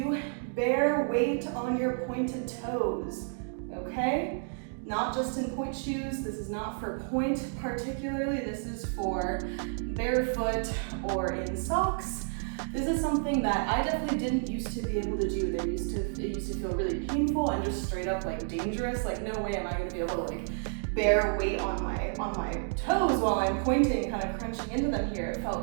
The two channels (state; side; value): silent; left; 57 dB below the other